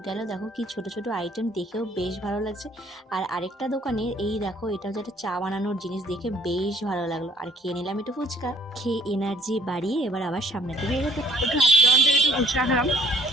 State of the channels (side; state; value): both; normal; correlation 0.60